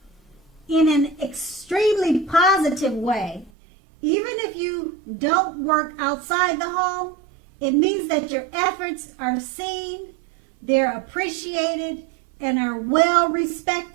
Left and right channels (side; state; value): left; drops out; at 3.5 s